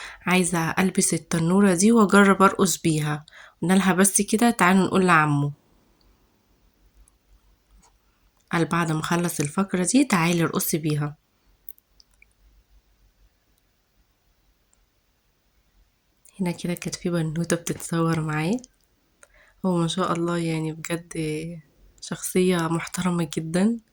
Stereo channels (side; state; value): both; identical; correlation 1.00